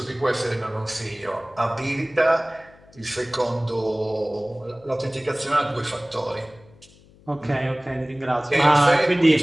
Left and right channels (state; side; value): noise; left; hum, 26 dB below the sound